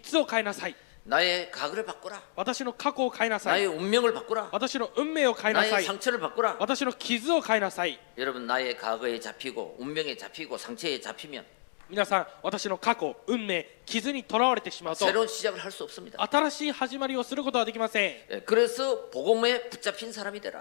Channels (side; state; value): right; silent; 58 dB below the other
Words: つを変えなさい。 나의 과거를 바꾸라. 私の過去を変えなさい。 나의 운명을 바꾸라. 私の運命を変えなさ 나의 い。 상처를 바꾸라. 私の傷を変えなさい。 여러분 나의 과거에 잡히고 운명에 잡히고 상처에 잡히면 皆さん、私の過去、運命、傷にとらわれてしまうと 새로운 시작을 할 수 없습니다. 新しい始まりをすることはできません。 그래서 복음에 붙잡힌 사람이